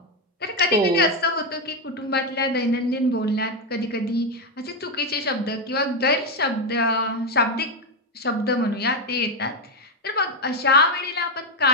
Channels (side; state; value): both; normal; correlation 0.06